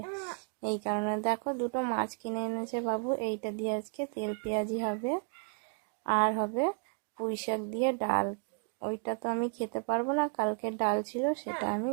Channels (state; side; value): quieter; left; 37.6 dB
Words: এই কারণে দেখো দুটো মাছ কিনে এনেছে বাবু, এইটা দিয়ে আজকে তেল পেঁয়াজি হবে। আর হবে পুঁই শাক দিয়ে ডাল। ওইটা তো আমি খেতে পারবো না, কালকে ডাল ছিল সেটা আমি